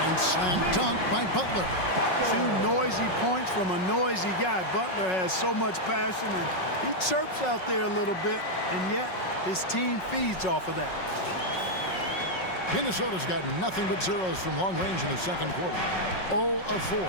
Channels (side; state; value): right; late; 5.4 ms